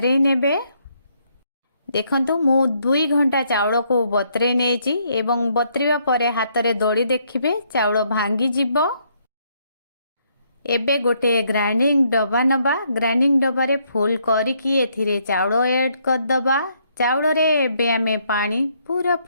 नेबे। देखंतु मु 2 घंटा चाउल को बतरे नेछि एवं बतरिबा परे हाथ रे दड़ी देखिबे चाउल भांगी जिवो। एबे गोटे ग्राइंडिंग डब्बा नबा। ग्राइंडिंग डब्बा रे फुल करिकी एथिरे चाउल ऐड कर दबा। चाउल रे एबे आमे पानी पूरा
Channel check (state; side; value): inverted; both; correlation -0.71